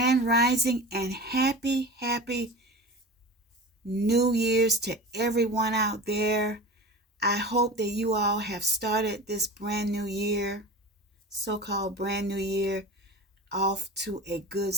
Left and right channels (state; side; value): normal; both; correlation 0.33